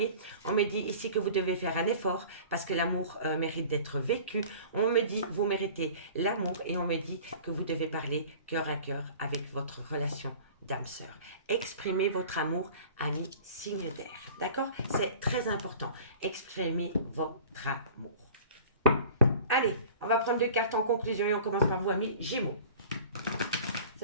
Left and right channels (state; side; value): inverted; both; correlation -0.43